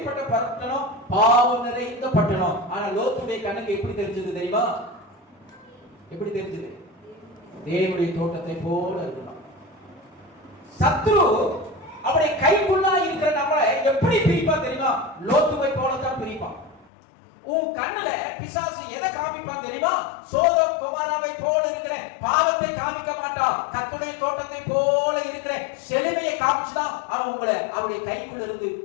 பட்டணம்? பாவம் நிறைந்த பட்டணம். ஆனா லோத்துடைய கண்ணுக்கு எப்படி தெரிஞ்சது தெரியுமா? எப்படி தெரிஞ்சது? தேவனுடைய தோட்டத்தை போல இருக்கணும். சத்ரு அவருடைய கைக்குள்ளா இருக்கிற நம்மளை எப்படி பிரிப்பான் தெரியுமா? லோத்துவை போலத்தான் பிரிப்பான். உன் கண்ணுல பிசாசு எதை காமிப்பான் தெரியுமா? சோதோம் குமாராவை போல இருக்கிற பாவத்தை காமிக்க மாட்டான். கர்த்தருடைய தோட்டத்தை போல இருக்கிற செழுமையை காமிச்சுதான் அவன் உங்களை அவருடைய கைக்குள்ள இருந்து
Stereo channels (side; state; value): right; drops out; at 16.9 s